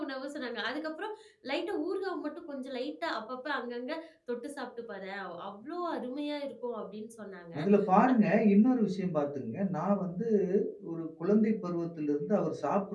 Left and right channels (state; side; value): identical; both; correlation 1.00